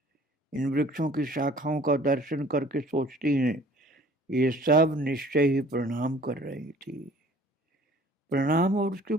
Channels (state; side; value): normal; both; correlation 0.52